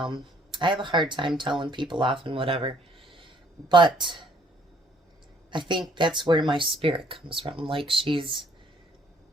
have a hard time telling people off and whatever. But I think that's where my spirit comes from. Like, she's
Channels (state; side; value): normal; both; correlation 0.63